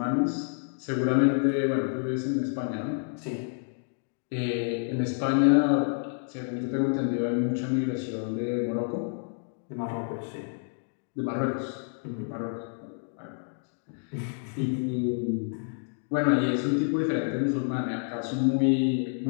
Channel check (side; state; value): right; silent; 59 dB below the other